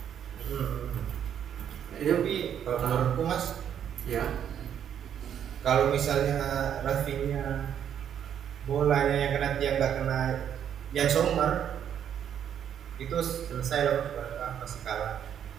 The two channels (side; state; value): left; quieter; 9.2 dB